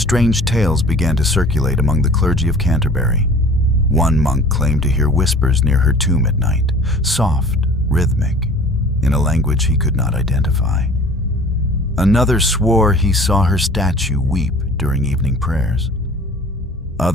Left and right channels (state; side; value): normal; both; correlation 0.46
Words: tales began to circulate among the clergy of Canterbury. One monk claimed to hear whispers near her tomb at night, soft, rhythmic, in a language he could not identify. Another swore he saw her statue weep during evening prayers.